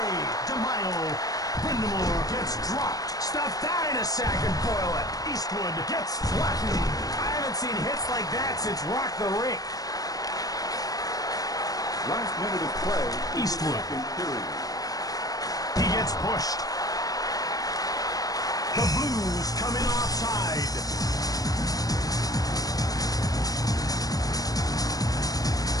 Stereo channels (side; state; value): right; late; 0.18 ms